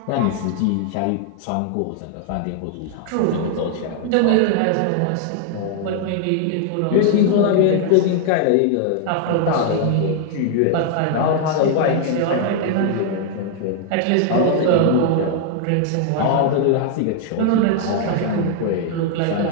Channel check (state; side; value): different; both; correlation 0.00